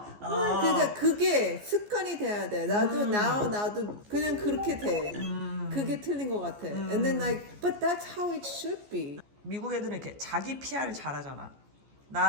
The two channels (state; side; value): late; left; 14 ms